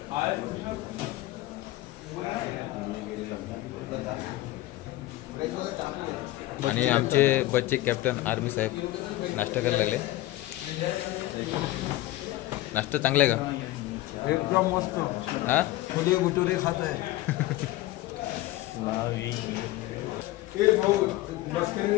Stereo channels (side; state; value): right; quieter; 16.8 dB